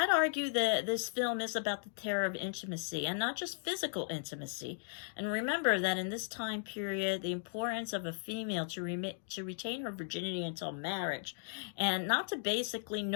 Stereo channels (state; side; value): silent; right; digital silence